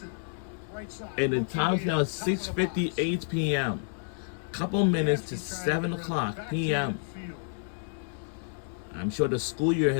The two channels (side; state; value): right; silent; digital silence